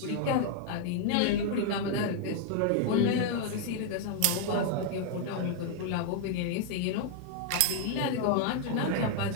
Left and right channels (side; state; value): both; different; correlation 0.00